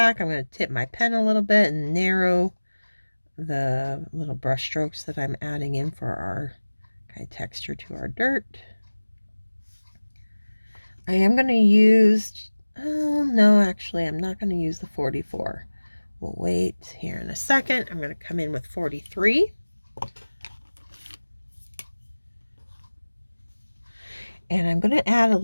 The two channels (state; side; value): inverted; both; correlation -1.00